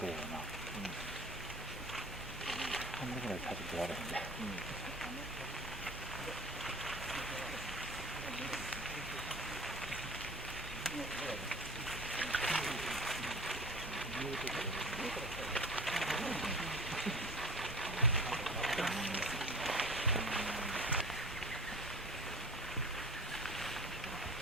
한국에 사실 좋아하는데.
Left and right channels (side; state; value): both; normal; correlation 0.40